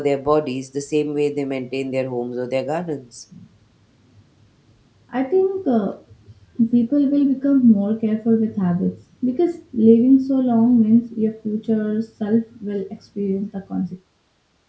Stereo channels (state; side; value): identical; both; correlation 1.00